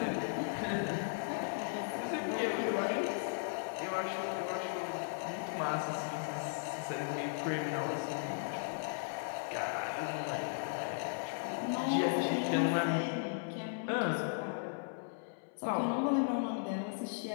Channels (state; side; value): silent; right; 53 dB below the other